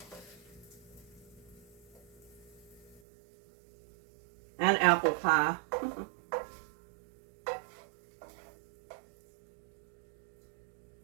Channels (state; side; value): drops out; left; at 3.0 s